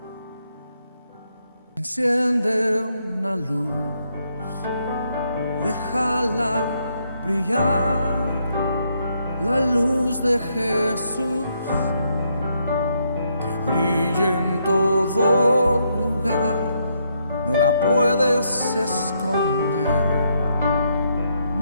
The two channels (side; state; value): both; inverted; correlation -0.75